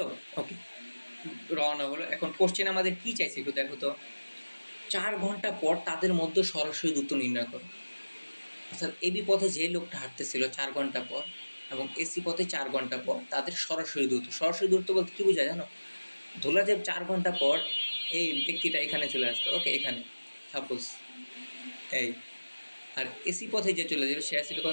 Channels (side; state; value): both; inverted; correlation -1.00